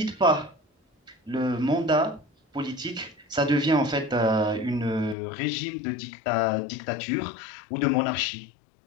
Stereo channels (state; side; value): drops out; right; at 5.2 s